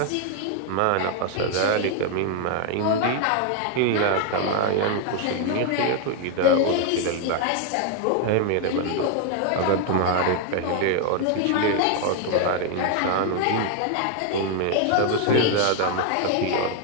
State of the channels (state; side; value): different; both; correlation 0.00